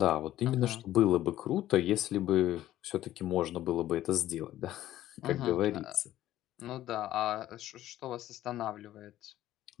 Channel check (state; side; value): quieter; right; 13.7 dB